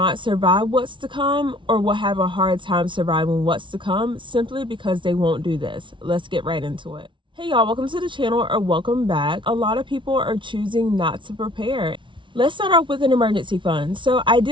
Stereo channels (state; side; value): late; left; 0.24 ms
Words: survive what's to come, or will have a hard time surviving what's to come simply because they won't do this. Let's get right into it. Hey y'all, welcome to the channel, or welcome back. A lot of people are choosing not to prepare. Let's start off with an emergency fund. So